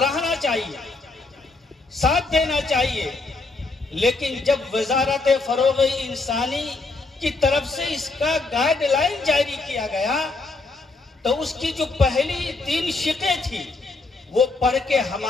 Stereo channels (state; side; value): quieter; right; 3.6 dB